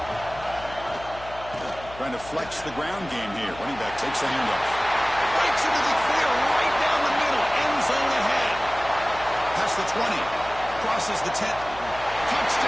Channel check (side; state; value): left; noise; hum, 17 dB below the sound